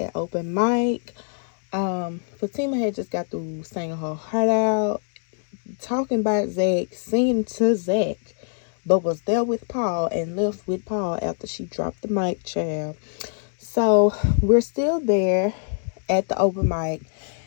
open mic. Fatima had just got through singing her heart out, talking about Zach, singing to Zach, but was there with Paul and left with Paul after she dropped the mic, child. So we're still there at the open mic,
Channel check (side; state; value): right; silent; 63 dB below the other